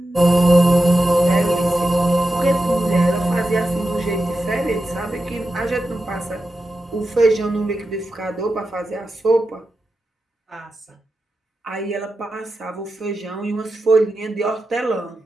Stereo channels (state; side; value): normal; both; correlation 0.90